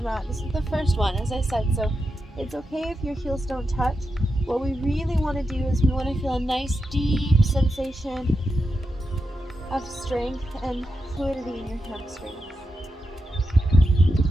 mat. This is the first one, as I said, so it's okay if your heels don't touch. What we really want to do is we want to feel a nice deep sensation of strength and fluidity in your hamstrings.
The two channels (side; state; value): both; normal; correlation 0.87